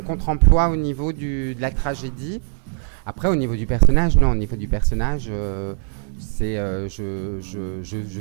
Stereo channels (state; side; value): silent; left; 62 dB below the other